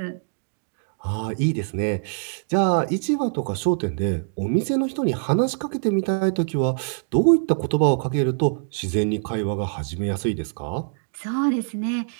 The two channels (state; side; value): silent; left; digital silence